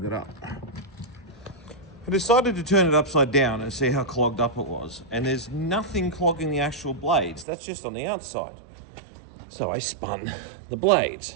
it up. I decided to turn it upside down and see how clogged up it was. And there's nothing clogging the actual blades. That's just on the outside. So I spun the blades.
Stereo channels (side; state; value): left; drops out; at 7.5 s